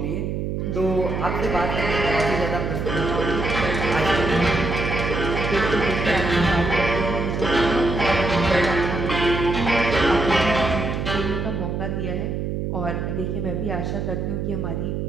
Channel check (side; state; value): right; noise; hum, 2 dB below the sound